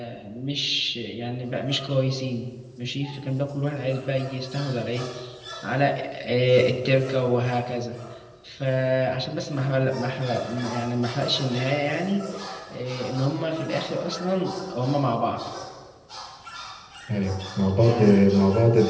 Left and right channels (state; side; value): identical; both; correlation 1.00